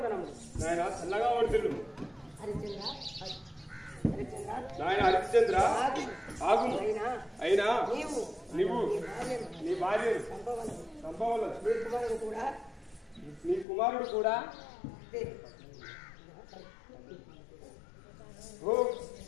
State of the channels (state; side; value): drops out; right; at 13.7 s